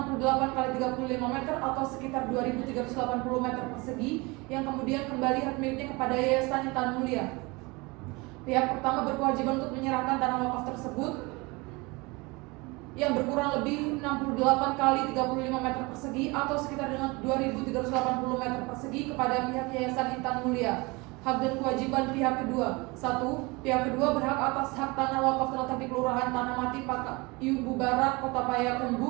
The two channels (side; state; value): left; quieter; 25.3 dB